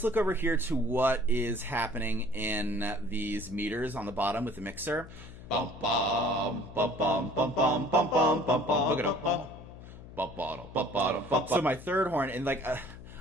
look over here to what is happening in these meters on the bottom with the mixer. Bum bum bum bum bum bum bum bum bum bum. Look it up. So my third horn, and like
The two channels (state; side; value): noise; left; hum, 16 dB below the sound